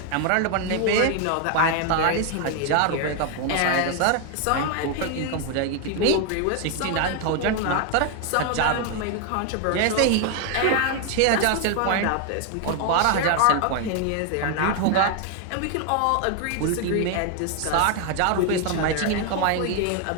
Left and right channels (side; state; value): both; different; correlation 0.01